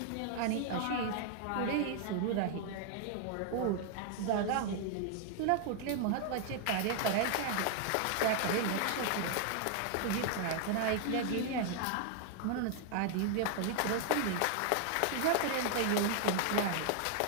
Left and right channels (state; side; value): different; both; correlation 0.00